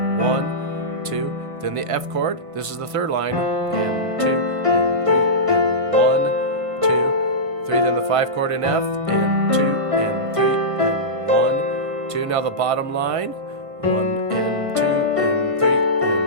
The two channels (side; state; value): left; late; 1.6 ms